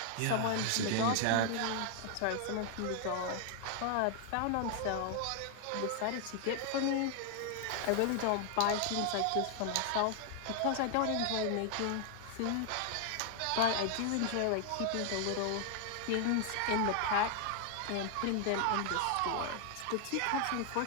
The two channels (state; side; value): different; both; correlation 0.00